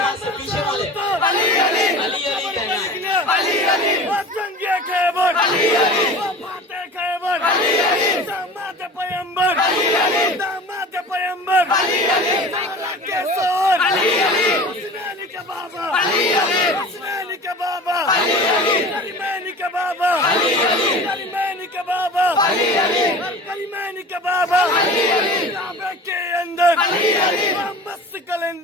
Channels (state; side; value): normal; both; correlation 0.37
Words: तो अली अली लिखना अली अली जंगे खैबर अली अली फाते खैबर अली अली दामाद पैगंबर अली अली दामाद पैगंबर अली अली ताला के सोर अली अली हुस्नैन के बाबा अली अली हुस्नैन के बाबा अली अली करीमैन के बाबा अली अली करीमैन के बाबा अली अली करीमैन के बाबा अली अली काबे के अंदर अली अली मस्त